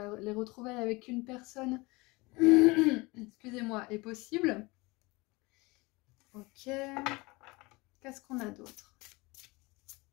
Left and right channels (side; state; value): right; quieter; 24.2 dB